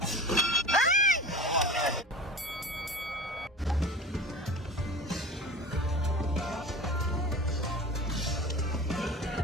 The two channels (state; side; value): normal; both; correlation 0.36